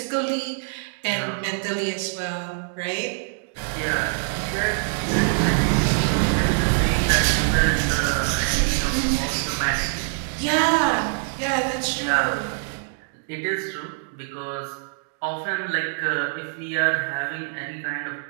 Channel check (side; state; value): left; silent; digital silence